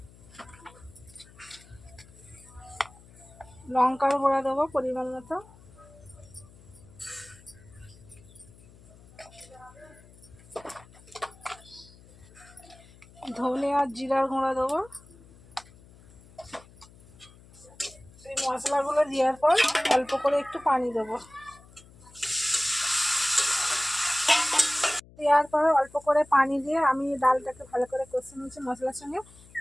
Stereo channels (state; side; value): noise; left; hum, 23 dB below the sound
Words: লঙ্কার গুঁড়ো দেবো পরিমাণ মতো, ধনে আর জিরার গুঁড়ো দেবো। এই মশলাগুলো দেওয়ার পর অল্প করে একটু পানি দেবো। দেওয়ার পর অল্প করে পানি দিয়ে আমি ডালটাকে ভালো করে কষে নিয়েছি মশলার সঙ্গে।